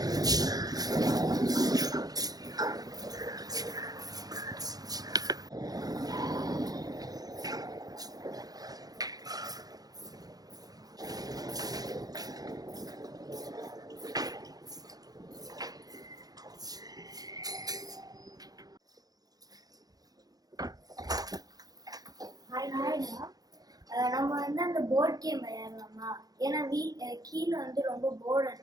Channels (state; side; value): late; left; 0.19 ms